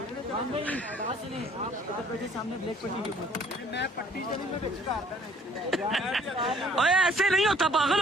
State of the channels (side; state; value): both; normal; correlation 0.58